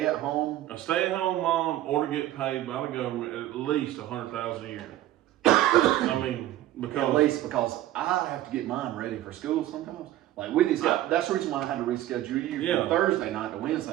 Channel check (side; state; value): left; quieter; 14.1 dB